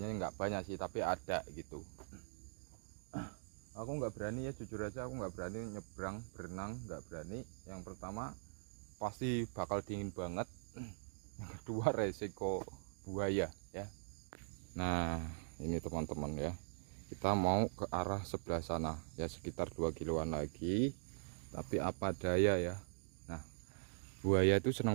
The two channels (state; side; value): silent; left; digital silence